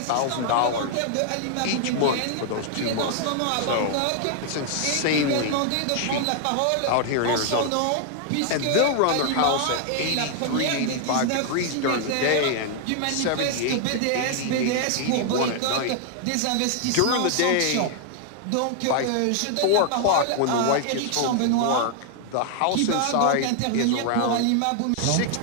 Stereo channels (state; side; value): different; both; correlation 0.00